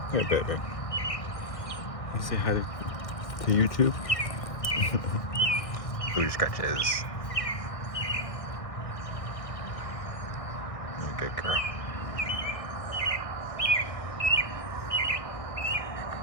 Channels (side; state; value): right; late; 1.6 ms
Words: Here, baby. You say hi to YouTube? Booty scratches. You're a good girl.